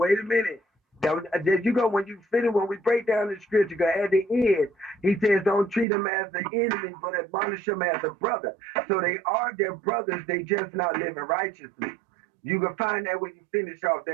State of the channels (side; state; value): left; drops out; at 5.9 s